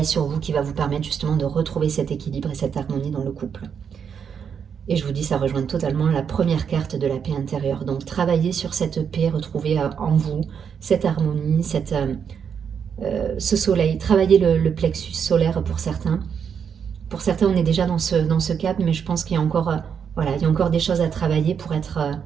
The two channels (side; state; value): left; quieter; 7.2 dB